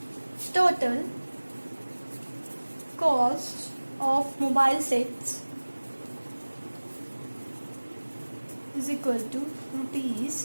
Total cost of mobile sets is equal to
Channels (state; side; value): inverted; both; correlation -1.00